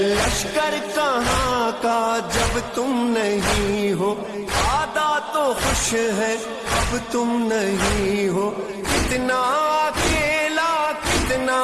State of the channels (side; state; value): both; identical; correlation 1.00